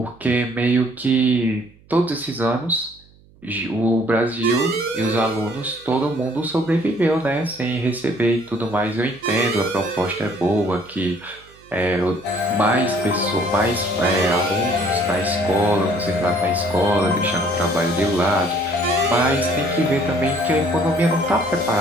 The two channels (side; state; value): right; noise; hum, 28 dB below the sound